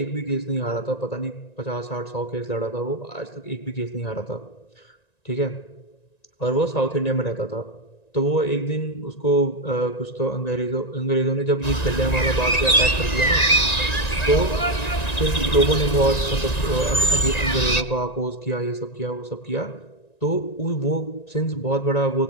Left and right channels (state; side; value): late; right; 1.9 ms